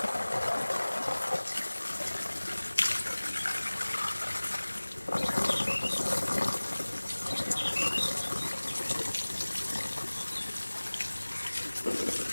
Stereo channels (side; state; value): both; inverted; correlation -1.00